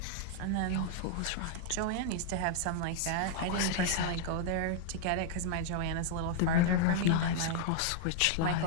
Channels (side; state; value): both; different; correlation -0.01